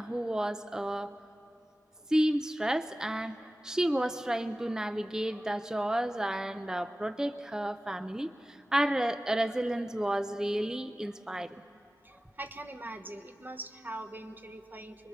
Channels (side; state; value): both; normal; correlation 0.96